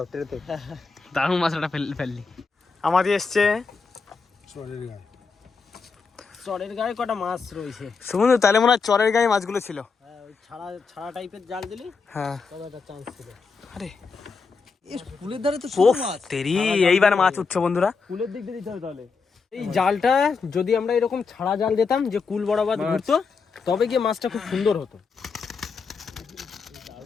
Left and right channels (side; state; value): right; quieter; 4.9 dB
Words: ট্রেতে। দারুণ মাছটা ফেললি। আমাদের এসছে চরের গায়ে। চরের গায়ে কটা মাছ রয়েছে সুমন, তাহলে মনে হয় চরের গায়ে মাছগুলো ছিল। হ্যাঁ, ওই ছাড়া টাইপের জাল দিলি, হ্যাঁ তবে একটা চান্স ছিল। আরে এই ফুলের ধারে তো ওফ তেরি, এইবার মাছ উঠছে বন্ধুরা। ফুলের দিক দিয়ে দিতে হবে তাহলে। এই জালটা যদি আমরা এরকম ছাড়া জাল দিতাম যে কুল বরাবর ঘুরতো, তবে গিয়ে মাছটা খুব সুন্দর হতো।